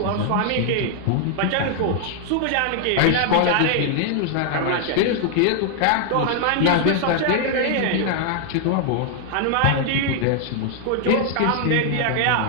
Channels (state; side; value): different; both; correlation 0.00